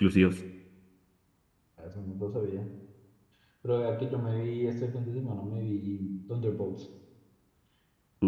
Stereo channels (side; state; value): both; identical; correlation 1.00